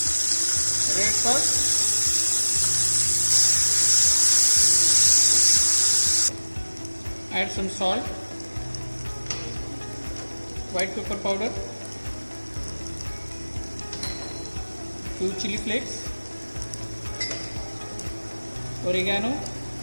red sauce, add some salt, white pepper powder, few chili flakes, oregano,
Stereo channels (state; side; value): inverted; both; correlation -1.00